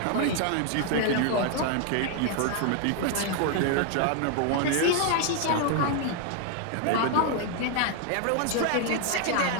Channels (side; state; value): both; different; correlation 0.00